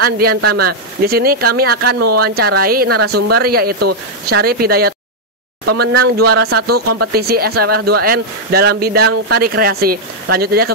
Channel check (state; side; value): normal; both; correlation -0.02